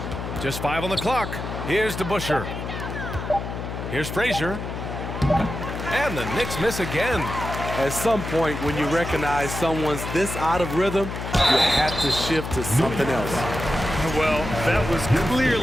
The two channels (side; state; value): left; noise; hum, 6 dB below the sound